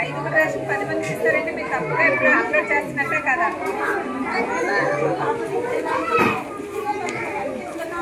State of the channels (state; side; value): identical; both; correlation 1.00